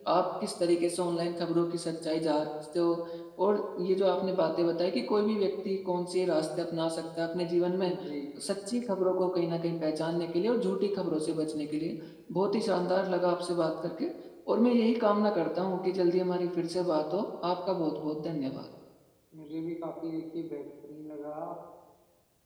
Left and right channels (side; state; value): both; identical; correlation 1.00